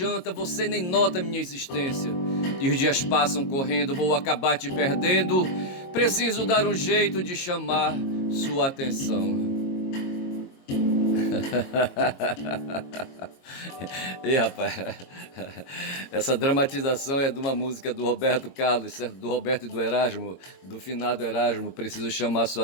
você nem nota minha existência. E os dias passam correndo, vou acabar te perdendo. Preciso dar um jeito de chamar sua atenção. Ei, rapaz, essa dramatização é de uma música do Roberto Carlos, certo? Do Roberto e do Erasmo, do finado Erasmo. Preciso chamar sua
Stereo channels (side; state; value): right; late; 22 ms